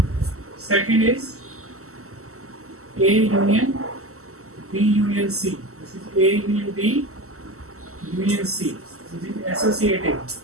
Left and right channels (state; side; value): late; left; 0.63 ms